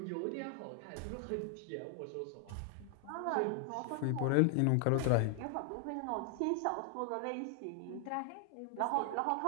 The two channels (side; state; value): both; different; correlation 0.00